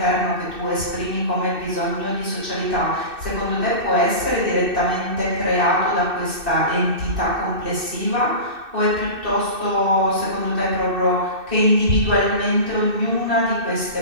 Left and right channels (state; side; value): late; left; 2.6 ms